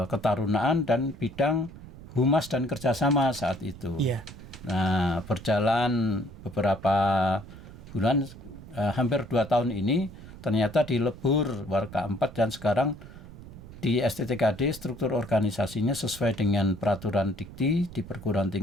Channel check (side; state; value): right; noise; rumble, 16 dB below the sound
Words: ketarunaan dan bidang humas dan kerjasama saat itu. Nah, berjalan beberapa bulan, hampir 2 tahun ini, ternyata dilebur Waka 4 dan sekarang di STTKD struktur organisasinya sesuai dengan peraturan dikti di perguruan